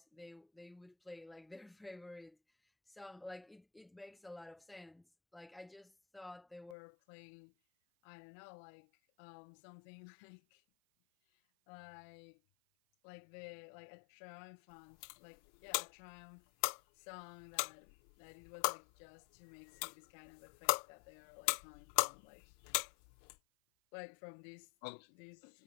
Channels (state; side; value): drops out; right; at 6.8 s